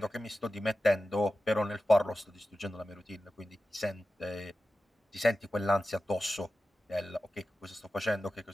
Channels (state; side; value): normal; both; correlation 0.93